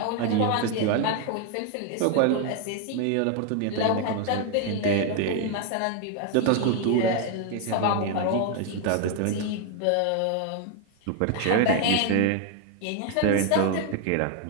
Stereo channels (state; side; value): different; both; correlation 0.01